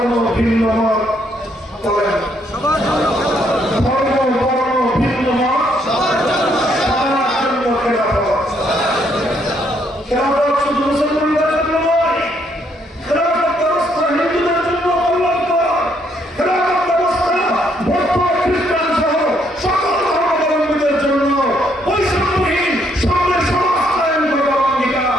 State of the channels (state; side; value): normal; both; correlation 0.71